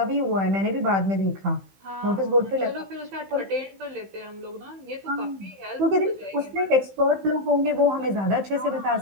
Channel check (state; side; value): late; left; 15 ms